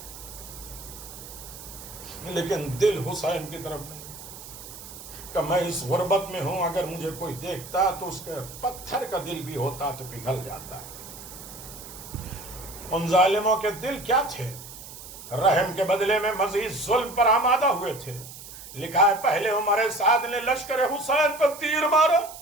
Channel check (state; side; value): noise; right; hiss, 14 dB below the sound